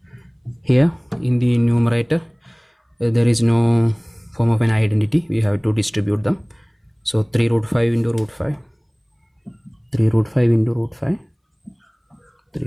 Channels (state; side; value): identical; both; correlation 1.00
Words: Here in the numerator there is no form of an identity. We have to distribute them. So 3 root 5 into root 5, 3 root 5 into root 5,